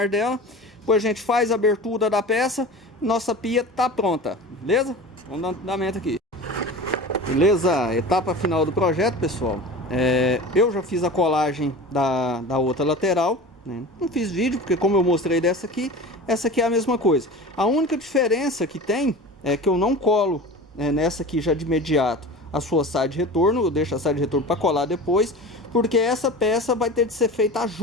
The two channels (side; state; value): both; normal; correlation 0.34